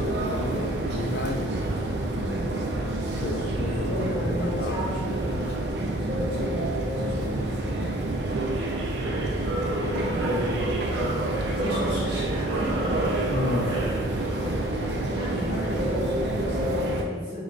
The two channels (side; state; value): both; normal; correlation 0.54